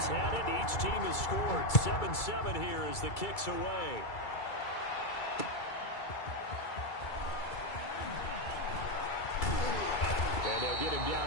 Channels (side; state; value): right; late; 2.3 ms